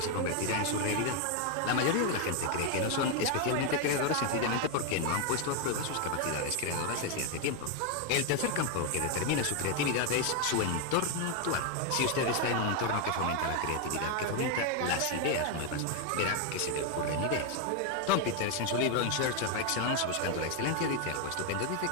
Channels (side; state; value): both; different; correlation 0.01